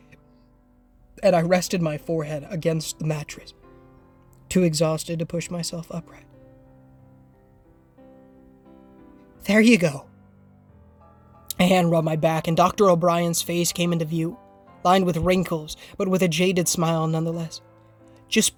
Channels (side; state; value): both; identical; correlation 1.00